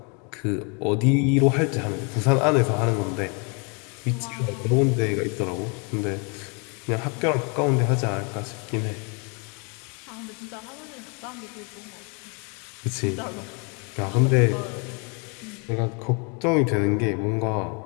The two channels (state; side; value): quieter; right; 34.6 dB